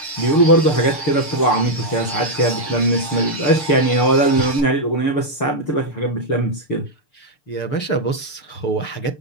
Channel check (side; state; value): right; late; 6.8 ms